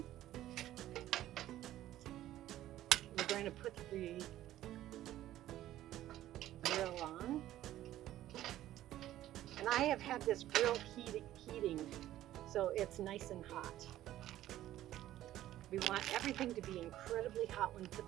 We're going to put the grill on. And I have had this grill heating, so it's nice and hot. We want everything to be incredibly hot when we put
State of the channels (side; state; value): left; quieter; 13.6 dB